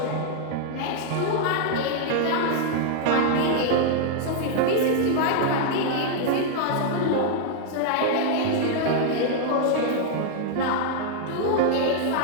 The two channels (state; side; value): different; both; correlation -0.01